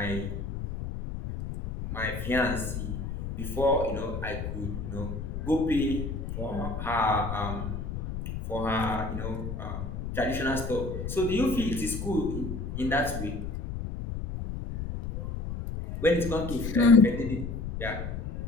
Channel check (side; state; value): left; noise; rumble, 5 dB below the sound